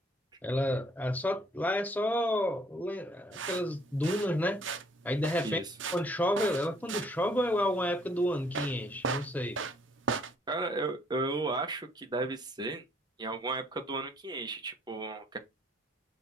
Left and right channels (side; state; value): both; normal; correlation 0.64